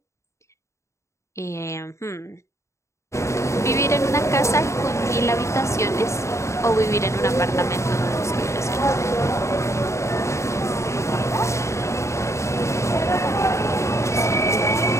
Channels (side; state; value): right; late; 0.14 ms